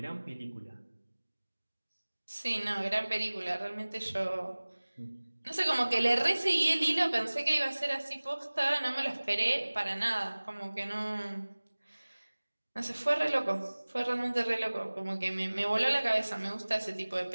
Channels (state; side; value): inverted; both; correlation -1.00